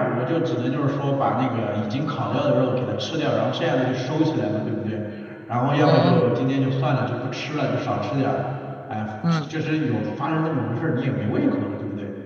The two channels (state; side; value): identical; both; correlation 1.00